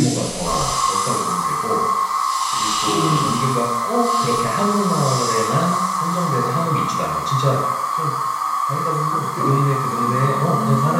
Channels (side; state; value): both; identical; correlation 1.00